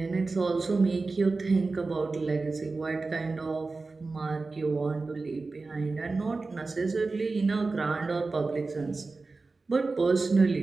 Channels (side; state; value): left; quieter; 3.8 dB